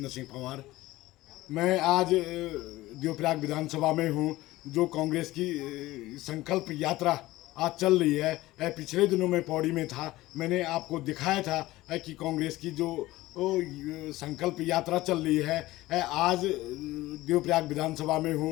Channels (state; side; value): quieter; right; 17.6 dB